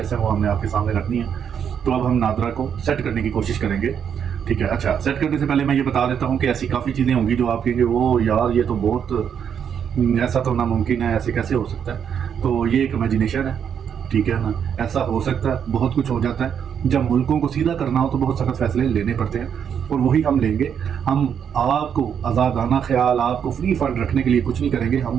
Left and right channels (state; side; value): quieter; left; 8.0 dB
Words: ہیں وہ ہم نے آپ کے سامنے رکھنی ہیں. تو اب ہم نادرا کو سیٹ کرنے کی کوشش کریں گے. ٹھیک ہے. اچھا, سیٹ کرنے سے پہلے میں یہ بتا دیتا ہوں کہ ایسی کافی چیزیں ہوں گی جو آپ کہیں گے وہ یار یہ تو بہت ایسا تو ناممکن ہے, ایسے کیسے ہو سکتا ہے. تو یہ ایک امیجنیشن ہے. ٹھیک ہے نا, ایسا ہو سکتا ہے, بہت کچھ ہو جاتا ہے. جب ملکوں کو سیدھا کرنا ہو تو بہت سخت فیصلے لینے پڑتے ہیں, اور وہی ہم لیں گے. ہم آپ کو آزادانہ خیال, آپ کو فری فنڈ رکھنے کے لیے کچھ نہیں کریں گے.